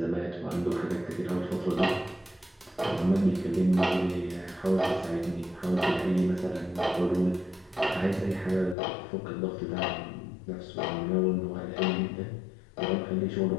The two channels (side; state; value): right; drops out; at 8.8 s